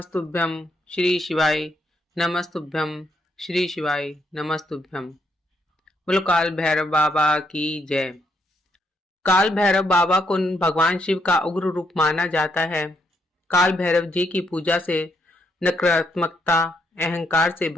श्री शिवाय नमस्तुभ्यं श्री शिवाय नमस्तुभ्यं। बोलो काल भैरव बाबा की जय। काल भैरव बाबा को भगवान शिव का उग्र रूप माना जाता है। काल भैरव जी की पूजा से नकारात्मकता अहंकार से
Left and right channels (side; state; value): both; normal; correlation 0.75